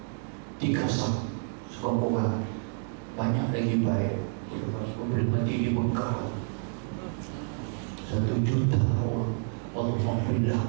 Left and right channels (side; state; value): left; silent; 58 dB below the other